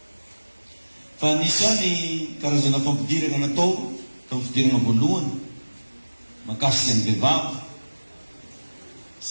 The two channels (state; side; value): inverted; both; correlation -1.00